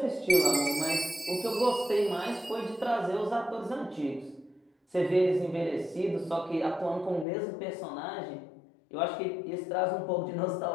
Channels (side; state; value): right; drops out; at 7.2 s